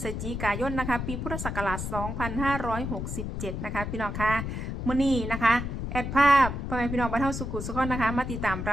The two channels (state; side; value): noise; left; rumble, 4 dB below the sound